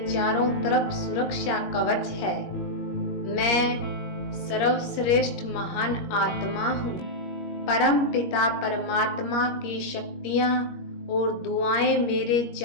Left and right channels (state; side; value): late; right; 21 ms